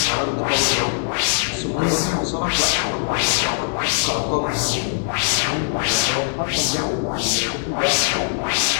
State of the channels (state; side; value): silent; right; digital silence